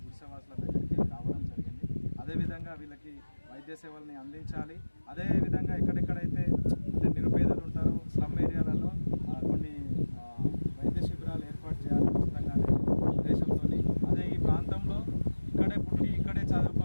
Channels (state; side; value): inverted; both; correlation -1.00